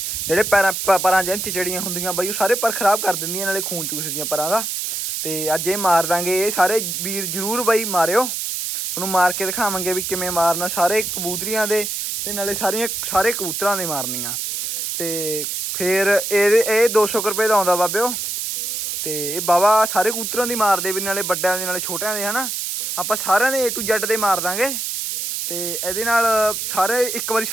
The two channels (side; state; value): right; noise; hiss, 3 dB below the sound